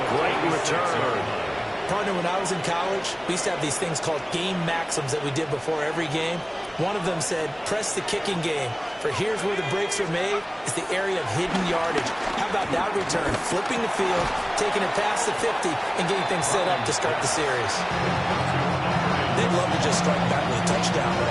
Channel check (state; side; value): identical; both; correlation 1.00